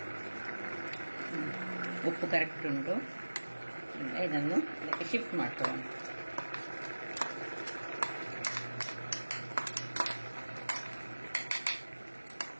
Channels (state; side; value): inverted; both; correlation -1.00